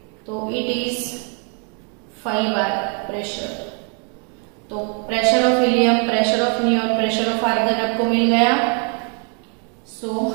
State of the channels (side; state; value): left; quieter; 39.9 dB